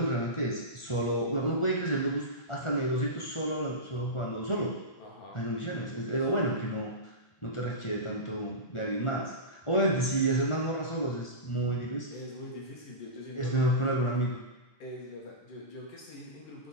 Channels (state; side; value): late; right; 1.4 ms